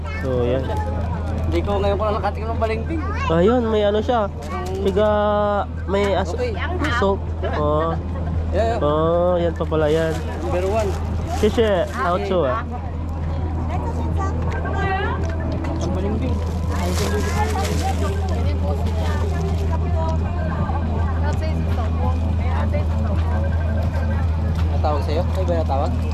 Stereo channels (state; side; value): identical; both; correlation 1.00